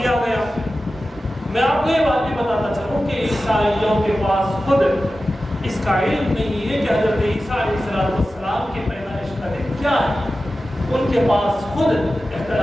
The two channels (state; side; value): normal; both; correlation 0.94